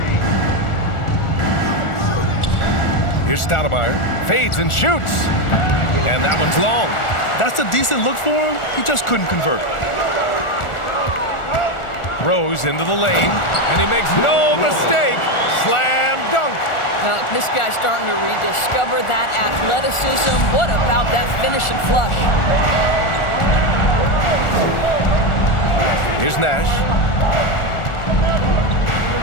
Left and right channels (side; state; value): right; late; 1.4 ms